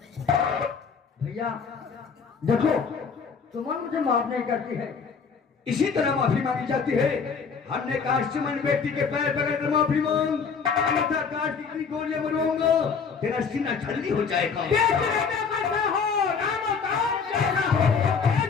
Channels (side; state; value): right; quieter; 5.8 dB